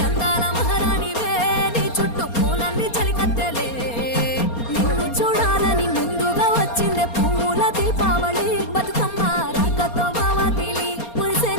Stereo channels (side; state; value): right; late; 4.3 ms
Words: అందాల మహారాణివే నీ చుట్టూ పూలన్నీ చలికత్తెలే నిన్ను చూడాలని ముందుగా వచ్చిందే పూల దీపావళి బతుకమ్మ రాకతో మావాకిలి